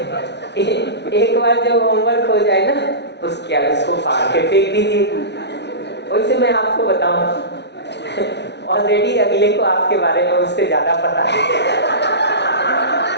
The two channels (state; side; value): late; right; 0.50 ms